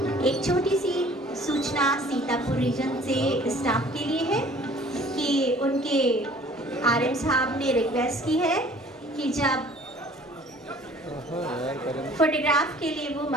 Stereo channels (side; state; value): both; normal; correlation 0.52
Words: एक छोटी सी सूचना सीतापुर रीजन से स्टाफ के लिए है कि उनके आरएम साहब ने रिक्वेस्ट की है कि जब फोटोग्राफ के लिए वो